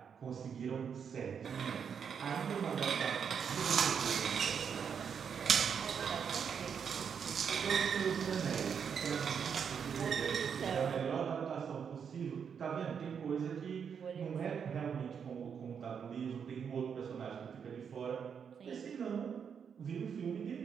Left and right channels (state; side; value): quieter; left; 7.1 dB